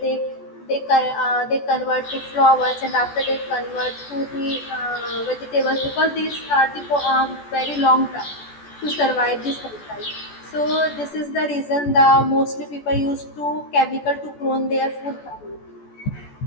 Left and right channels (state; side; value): late; right; 14 ms